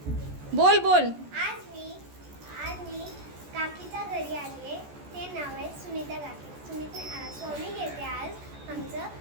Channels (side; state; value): left; late; 14 ms